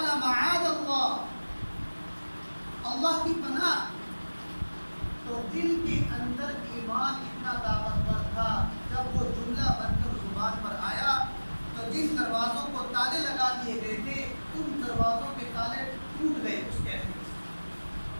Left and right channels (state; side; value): inverted; both; correlation -1.00